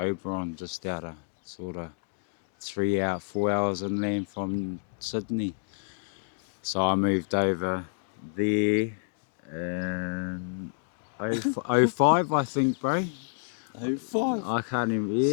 just out of sort of 4 hours inland from Sydney. So I moved over there in 05, I think, bro. 05? I can't even,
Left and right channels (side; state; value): right; silent; digital silence